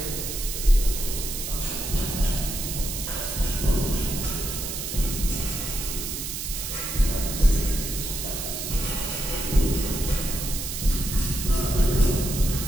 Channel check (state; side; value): noise; right; hiss, 5 dB below the sound